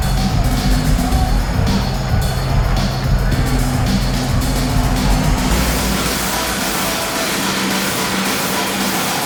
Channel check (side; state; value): both; identical; correlation 1.00